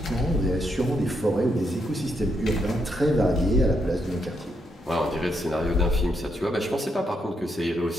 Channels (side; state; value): both; normal; correlation 0.79